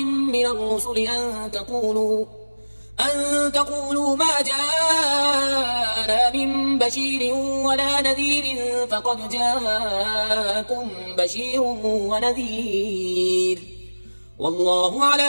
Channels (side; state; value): both; inverted; correlation -1.00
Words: من الرسل أن تقولوا ما جاءنا من بشير ولا نذير فقد جاءكم بشير ونذير والله